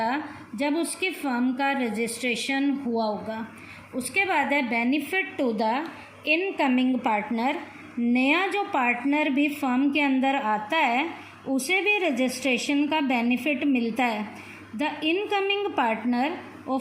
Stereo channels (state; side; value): identical; both; correlation 1.00